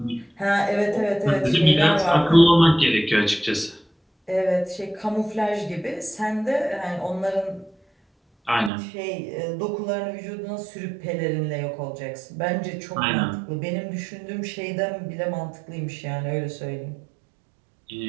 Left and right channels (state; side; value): drops out; left; at 8.7 s